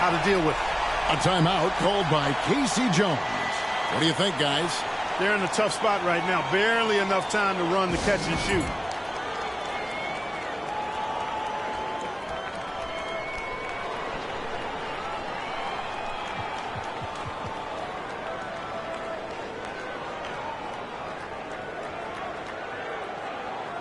to deal with it. A timeout called by Casey Jones. What do you think, guys? They're in a tough spot right now. Barely enough time to run the catch and shoot.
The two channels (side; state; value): both; identical; correlation 1.00